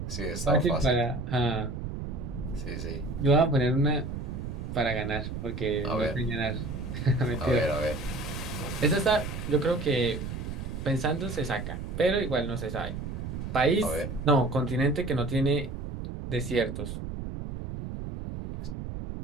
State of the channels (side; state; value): right; noise; rumble, 6 dB below the sound